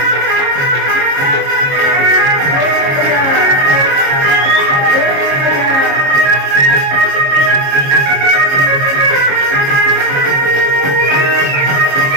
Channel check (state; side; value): late; left; 22 ms